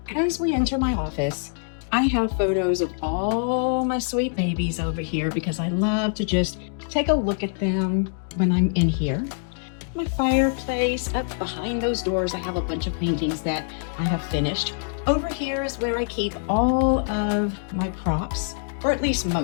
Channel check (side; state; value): right; silent; digital silence